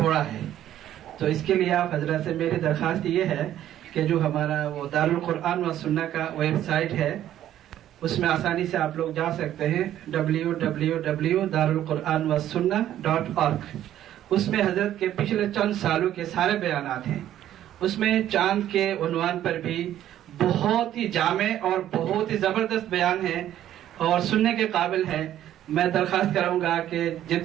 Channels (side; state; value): left; quieter; 12.0 dB